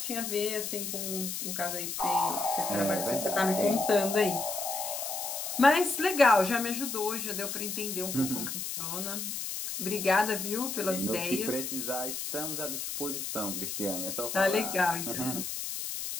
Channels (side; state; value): left; noise; hiss, 4 dB below the sound